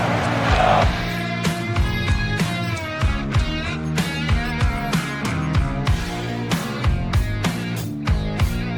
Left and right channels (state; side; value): identical; both; correlation 1.00